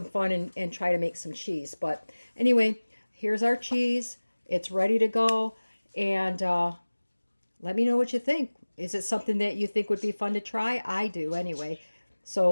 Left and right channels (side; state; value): both; inverted; correlation -1.00